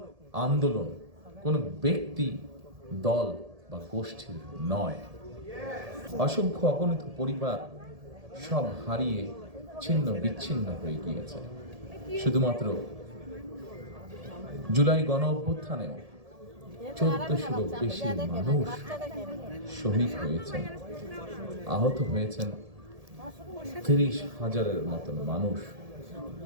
আন্দোলন কোনো ব্যক্তি, দল বা গোষ্ঠীর নয়। অসংখ্য অগণিত পরিবার সব হারিয়ে ছিন্ন বিচ্ছিন্ন হয়ে গিয়েছে। শুধুমাত্র জুলাই গণ অভ্যুত্থানেও 1400-ও বেশি মানুষ শহীদ হয়েছেন, আহত হয়েছেন 30,000-এর মতন মানুষ।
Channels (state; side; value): late; left; 1.7 ms